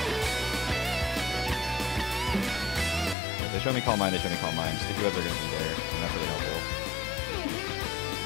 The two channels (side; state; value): right; drops out; at 3.2 s